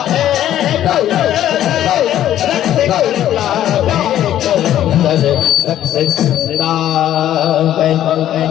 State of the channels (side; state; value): right; quieter; 12.0 dB